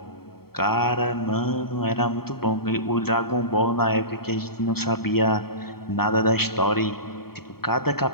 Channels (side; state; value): right; late; 0.95 ms